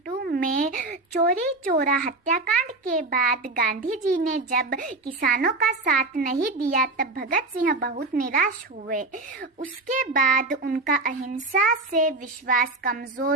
में चोरी चोरा हत्याकांड के बाद गांधी जी ने जब किसानों का साथ नहीं दिया तब भगत सिंह बहुत निराश हुए। उसके बाद उनका अहिंसा से विश्वास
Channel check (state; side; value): quieter; left; 3.2 dB